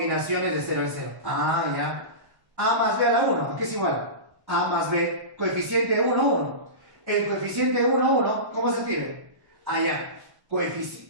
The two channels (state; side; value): late; left; 1.1 ms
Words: de 0 en 0. Ah, ya. A más b a la 1, ¿qué es igual? A más b, coeficiente 1, 1. El coeficiente 1, 1, ¿cómo se escribe? Allá.